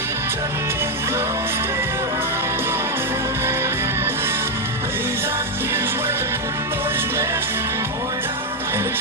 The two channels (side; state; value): both; normal; correlation 0.02